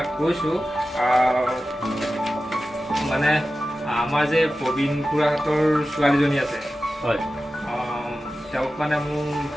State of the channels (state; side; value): normal; both; correlation 0.94